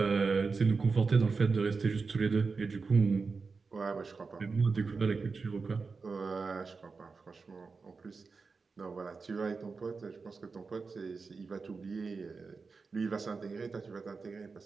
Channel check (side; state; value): left; quieter; 4.6 dB